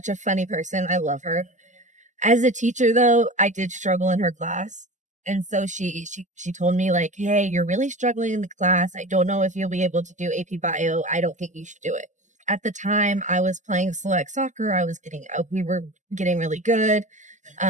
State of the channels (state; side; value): late; left; 0.35 ms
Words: a funny person. I love her. As a teacher, though, I did struggle in her class, and so she told me like, "Hey, you're really struggling in the class. I don't know if you'll be able to do AP Bio. I don't think you should do it." At the time I was playing select soccer. We were getting really good.